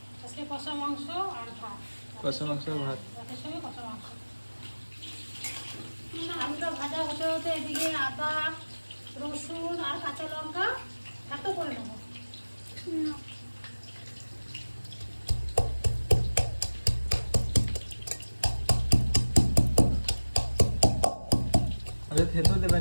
আজকে কষা মাংস আর ভাত। কষা মাংস আর ভাত। ভাতের সঙ্গে কষা মাংস। আলুটা ভাজা হতে হতে এদিকে আদা, রসুন আর কাঁচা লঙ্কা এত করে নেবো। আচ্ছা, থেতো দেবে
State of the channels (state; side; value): inverted; both; correlation -1.00